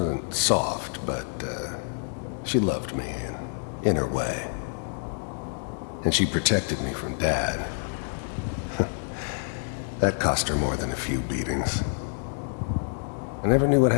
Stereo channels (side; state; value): right; silent; digital silence